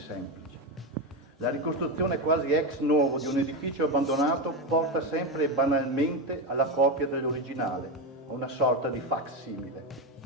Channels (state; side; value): normal; both; correlation 0.13